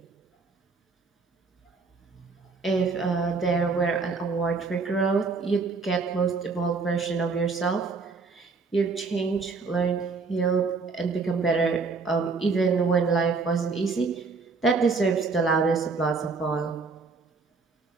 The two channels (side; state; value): left; quieter; 4.4 dB